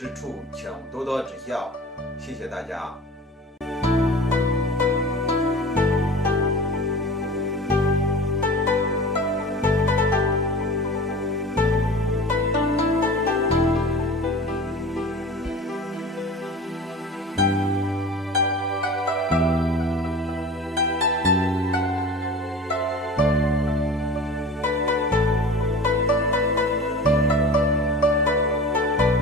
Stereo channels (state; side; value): normal; both; correlation 0.38